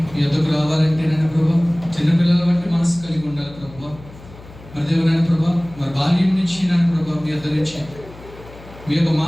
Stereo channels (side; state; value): left; noise; hum, 19 dB below the sound